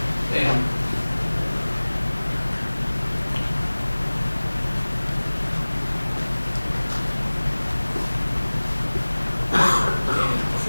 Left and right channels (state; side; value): inverted; both; correlation -1.00